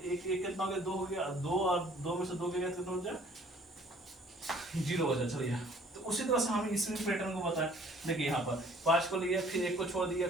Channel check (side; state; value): both; normal; correlation 0.56